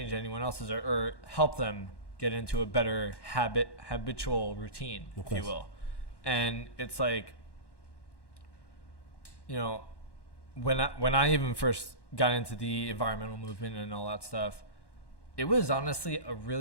anyone else's or help them get into a better habitual routine, if you will. And it's like, when I even first got into the environmental movement and all that stuff, it was honestly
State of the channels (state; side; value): late; right; 1.1 ms